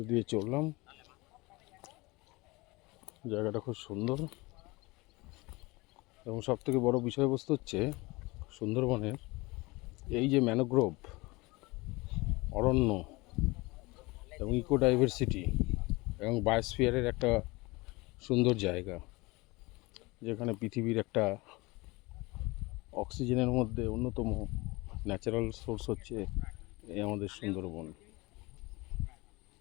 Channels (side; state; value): right; quieter; 23.5 dB